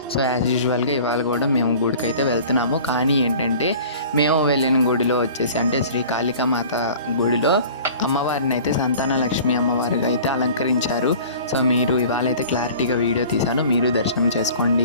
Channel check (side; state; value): both; inverted; correlation -0.44